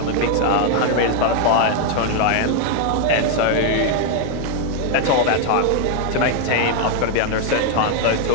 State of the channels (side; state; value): both; different; correlation 0.00